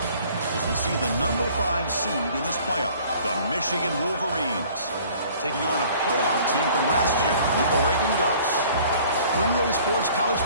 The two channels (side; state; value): both; inverted; correlation -0.52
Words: As we see the number 5 seed in this playoff, the Michigan Wolverines, taking on a playoff team from last year, the Oregon Ducks. For EA Sports College